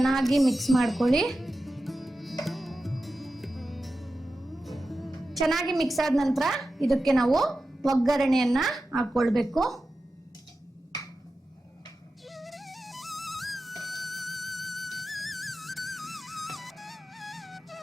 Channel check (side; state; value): both; normal; correlation 0.92